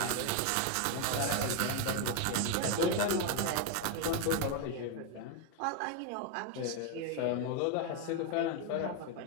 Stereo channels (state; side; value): different; both; correlation 0.02